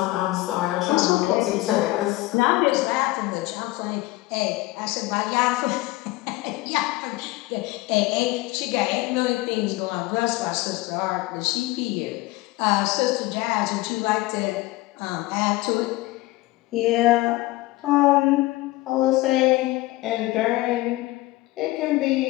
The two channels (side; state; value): right; quieter; 19.4 dB